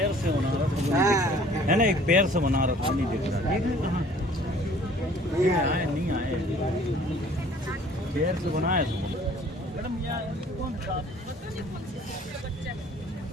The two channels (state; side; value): normal; both; correlation 0.53